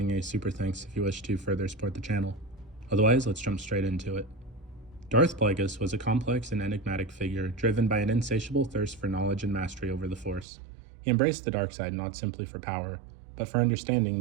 a super thanks if you wish to further support the channel. Otherwise, let's jump straight into it. Darth Plagueis was a complex and enigmatic figure driven by an insatiable thirst for knowledge and mastery over the Force. He embraced the dark side not simply for power, but for understanding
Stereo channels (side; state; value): left; drops out; at 10.5 s